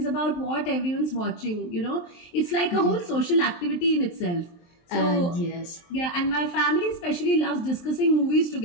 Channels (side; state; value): right; late; 23 ms